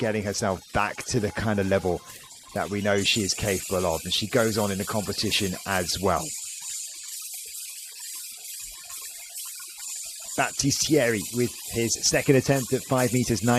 herself back to the kind of level that we know she is capable of. And she goes on in the competition as well. Battistieri with his second attempt at 5 meters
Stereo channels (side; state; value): both; identical; correlation 1.00